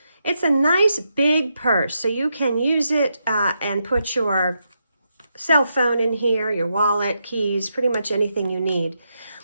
It's a nice big purse, so you can use it and put your cell phone in here, your wallet, keys, pretty much anything you need.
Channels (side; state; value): both; inverted; correlation -0.83